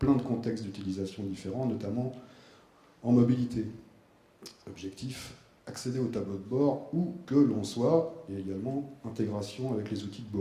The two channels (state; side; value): identical; both; correlation 1.00